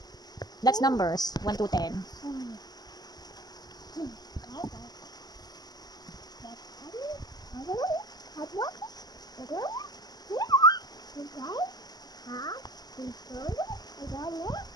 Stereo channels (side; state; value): right; late; 0.20 ms